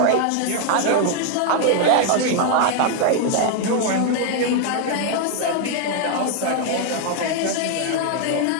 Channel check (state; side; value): different; both; correlation 0.00